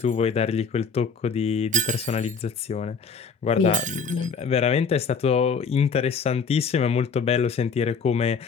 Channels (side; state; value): right; quieter; 5.3 dB